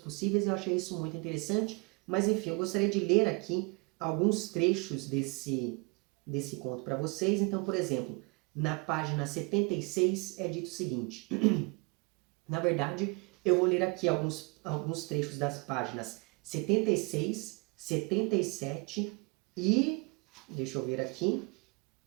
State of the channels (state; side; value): quieter; left; 31.7 dB